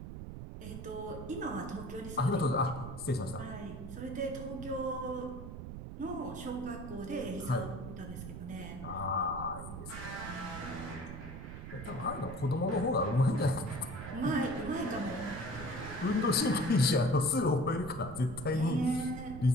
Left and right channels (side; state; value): right; noise; rumble, 9 dB below the sound